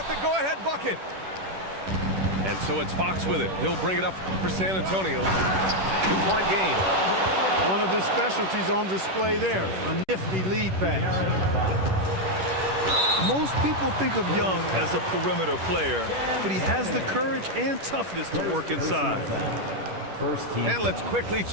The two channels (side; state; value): left; late; 10 ms